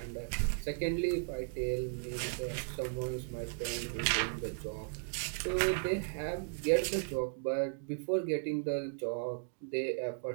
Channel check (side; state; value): left; silent; digital silence